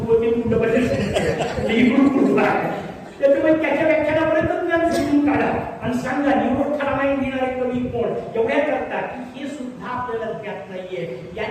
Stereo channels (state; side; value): identical; both; correlation 1.00